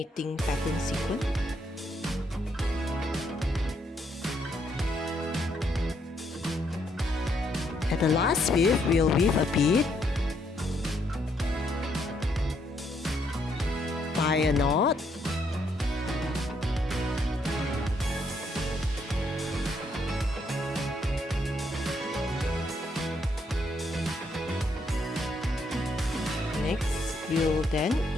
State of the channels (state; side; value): normal; both; correlation 0.73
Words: pattern sequence. At the last weave, we'll weave a bead, tie a knot, next we'll then